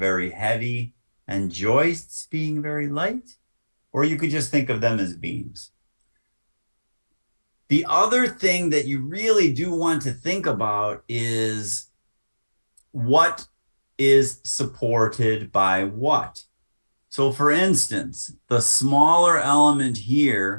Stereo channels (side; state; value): both; inverted; correlation -1.00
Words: heavy and joists being very light, or you could just think of them as beams. The other thing that you really do want to think about is what is supported by what. So for instance, the smaller element